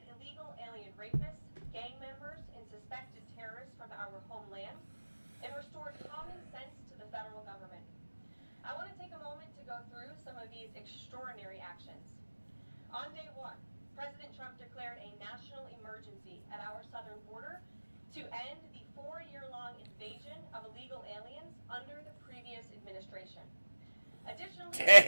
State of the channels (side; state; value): both; inverted; correlation -1.00